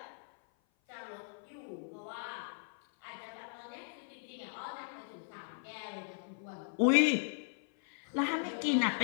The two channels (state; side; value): silent; right; 53 dB below the other